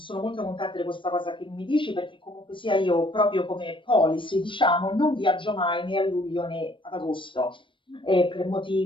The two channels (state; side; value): late; right; 0.24 ms